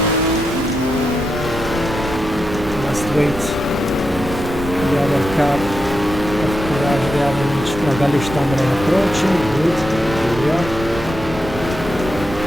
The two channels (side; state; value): both; normal; correlation 0.87